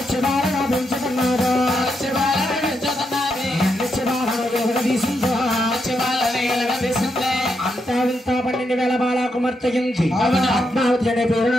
పెంచుతున్నాడు అంతా వింతా 12,000 బాల కుమార్తెగింది పద్మావతి అనే పేరు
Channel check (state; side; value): normal; both; correlation 0.82